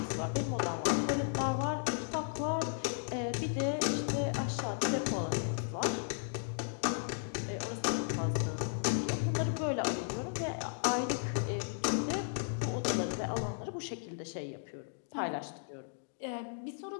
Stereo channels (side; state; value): right; silent; digital silence